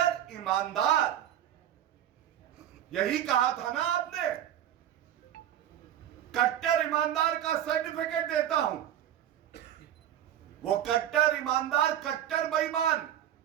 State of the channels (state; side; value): quieter; left; 11.1 dB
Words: ईमानदार, यही कहा था ना आपने, कट्टर ईमानदार का सर्टिफिकेट देता हूं। वो कट्टर ईमानदार कट्टर बेईमान